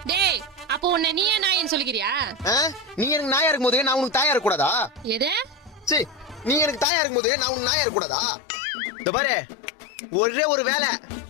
டேய், அப்போ உன்னை நீயே நாயின்னு சொல்லிக்கிறியா? நீங்க எனக்கு நாயா இருக்கும் போது நான் உனக்கு தாயா இருக்க கூடாதா? எது? சரி, நீ எனக்கு தாயா இருக்கும் போது நான் உனக்கு நாயா இருக்க கூடாதா? இந்த பாரு, ஒரே ஒரு வேலை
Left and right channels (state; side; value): drops out; right; at 6.9 s